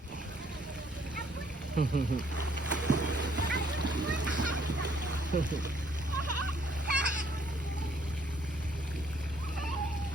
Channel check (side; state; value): both; normal; correlation 0.66